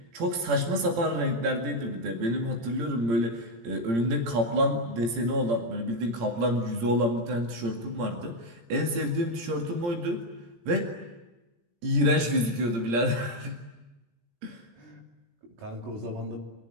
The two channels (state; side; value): late; left; 17 ms